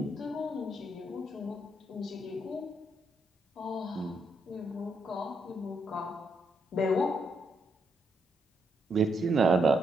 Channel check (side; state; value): both; normal; correlation 0.78